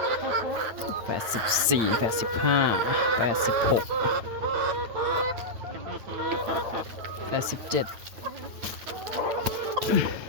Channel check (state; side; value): late; left; 8.8 ms